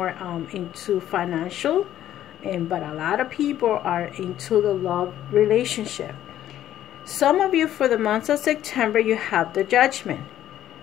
into financial, but a lot of people are into the love relationship. Some of you, for the month of September, you have the Judgment.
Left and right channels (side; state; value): right; quieter; 12.0 dB